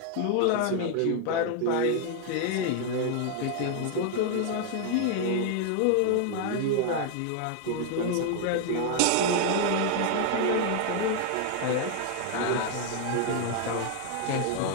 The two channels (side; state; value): both; different; correlation 0.00